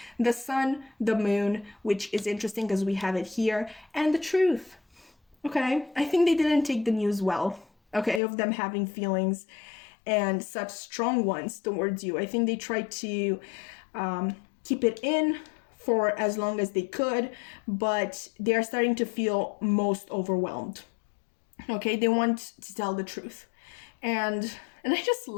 The sun, the moon, which is interesting because we have it here, and the truth. Okay, I think they didn't take the news well, okay, of them having feelings and such strong ones towards you. I think they tried to keep it in for as long as they could, but they are starting to feel most overwhelmed. Okay, they want to tell the truth. And I just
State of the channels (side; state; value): right; drops out; at 8.2 s